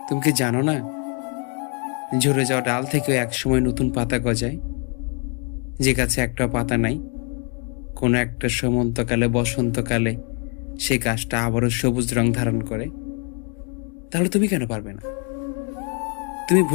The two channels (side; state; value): right; quieter; 38.9 dB